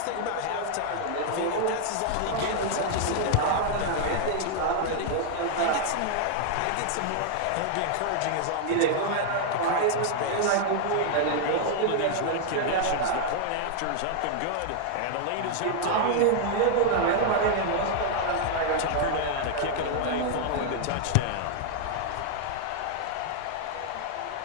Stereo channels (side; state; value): both; different; correlation -0.01